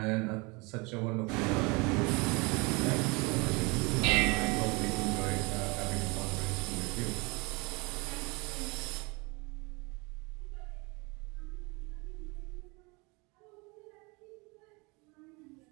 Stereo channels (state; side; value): quieter; left; 27.7 dB